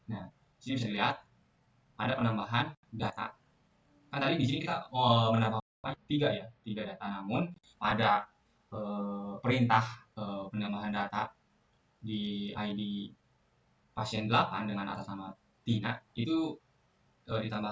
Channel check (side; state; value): both; identical; correlation 1.00